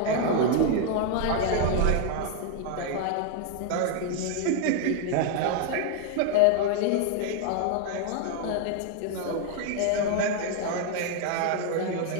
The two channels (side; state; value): both; different; correlation 0.00